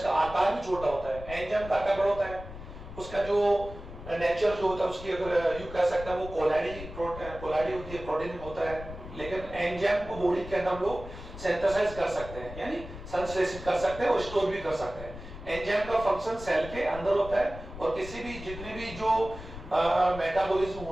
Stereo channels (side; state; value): left; noise; rumble, 12 dB below the sound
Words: आकार भी छोटा होता है। एंजाइम का आकार बड़ा होता है, उसका जो नेचर जो होता है उसकी अगर यू कह सकते हैं वो कोलाइडी होती है, प्रोटीन होता है, लेकिन एंजाइम को बॉडी के अंदर हम लोग सिंथेसाइज कर सकते हैं यानी संश्लेषित कर सकते हैं और स्टोर भी कर सकते हैं। एंजाइम का फंक्शन सेल के अंदर होता है और किसी भी जितनी भी जो मेटाबॉलिज्म